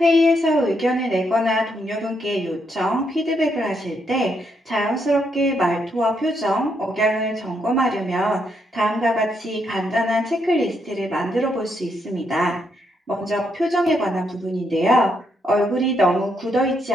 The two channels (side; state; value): both; normal; correlation 0.77